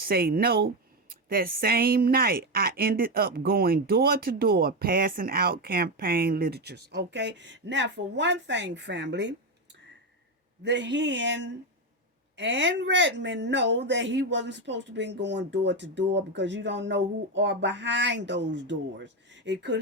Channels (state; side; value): normal; both; correlation 0.11